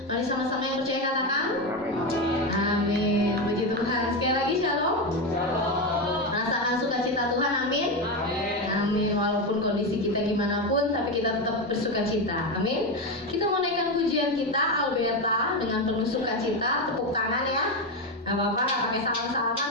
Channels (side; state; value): both; normal; correlation 0.13